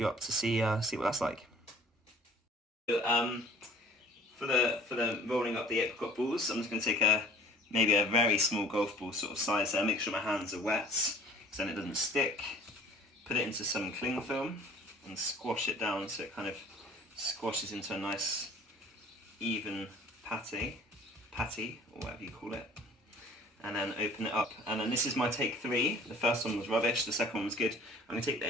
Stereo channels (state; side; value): normal; both; correlation 0.50